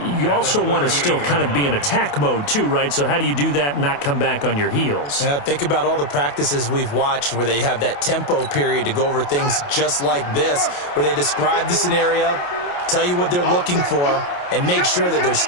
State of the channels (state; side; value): late; right; 28 ms